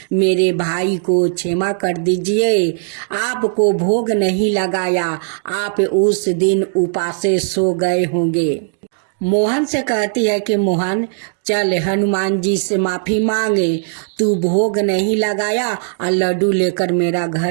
मेरे भाई को क्षमा कर दीजिए, आपको भोग नहीं लगाया, आप उस दिन उपासे सो गए होंगे। मोहन से कहती है कि मोहन, चल हनुमान जी से माफी मांगे, तू भोग नहीं लगाया और लड्डू लेकर मेरा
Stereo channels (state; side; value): silent; left; digital silence